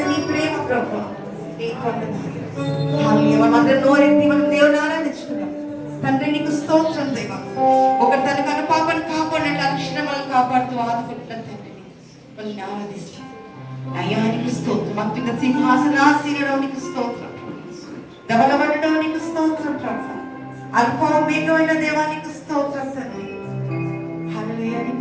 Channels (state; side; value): identical; both; correlation 1.00